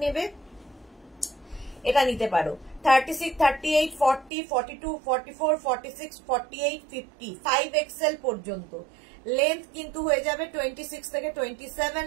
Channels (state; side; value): drops out; left; at 4.3 s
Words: নেবে, এটা নিতে পারো। 36, 38, 40, 42, 44, 46, 48, 50, 5XL পর্যন্ত। লেন্থ কিন্তু হয়ে যাবে 26 থেকে 27